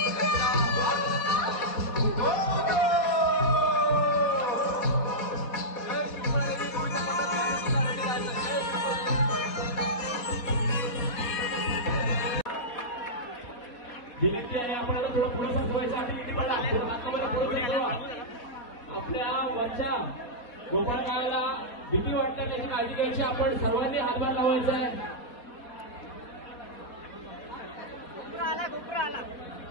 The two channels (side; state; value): right; late; 4.2 ms